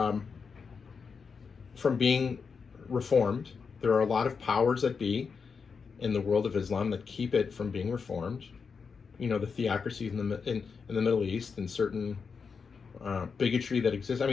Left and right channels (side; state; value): right; quieter; 5.6 dB